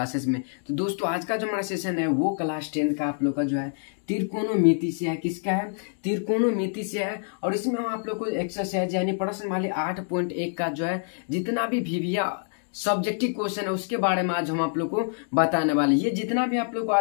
में। तो दोस्तों आज का जो हमारा सेशन है वो क्लास 10 का आप लोग का जो है त्रिकोणमिति से है। किसका है? त्रिकोणमिति से है। और इसमें हम आप लोग को एक्सरसाइज यानी प्रश्न वाले 8.1 का जो है जितना भी VBA सब्जेक्टिव क्वेश्चन है उसके बारे में आज हम आप लोग को बताने वाले। ये जितना भी आप लोग को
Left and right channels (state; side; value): silent; right; digital silence